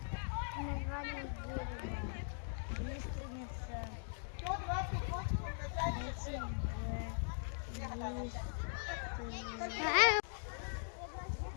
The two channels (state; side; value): silent; right; digital silence